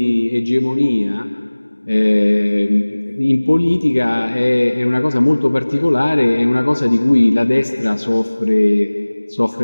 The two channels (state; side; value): inverted; both; correlation -1.00